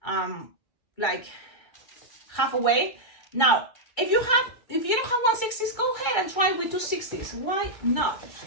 like halfway. Now, if you don't have 160s, go ahead and try with 260s. Why not?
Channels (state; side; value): late; right; 2.3 ms